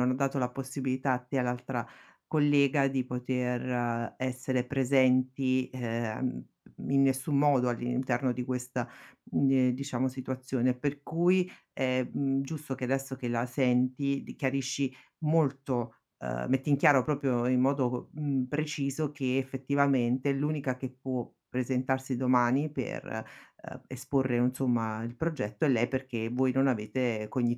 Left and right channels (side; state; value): both; identical; correlation 1.00